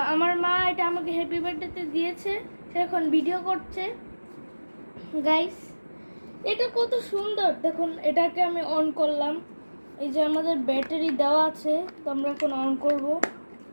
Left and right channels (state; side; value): inverted; both; correlation -1.00